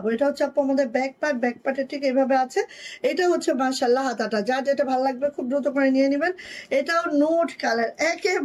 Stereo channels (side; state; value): both; identical; correlation 1.00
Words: এটা হচ্ছে আপু আমাদের ব্যাক পার্ট, ব্যাক পার্টের ঠিক এইভাবে আছে। এটা হচ্ছে মাশাআল্লাহ হাতাটা, যার যেটা ভালো লাগবে খুব দ্রুত করে নিয়ে নেবেন। এটাও নোট কালার,